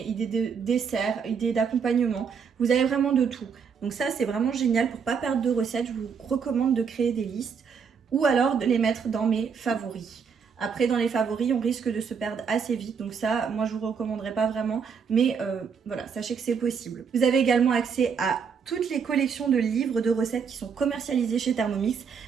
idées de dessert, idées d'accompagnement. Vous avez vraiment de tout. Donc ça, c'est vraiment génial. Pour ne pas perdre de recettes, je vous recommande de créer des listes ou alors de les mettre dans mes favoris. Après, dans les favoris, on risque de se perdre assez vite. Donc ça, moi, je vous recommanderais pas vraiment. Mais voilà, sachez que c'est possible. Vous avez également accès à toutes les collections de livres de recettes qui sont commercialisées chez Thermomix.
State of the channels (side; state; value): left; quieter; 6.3 dB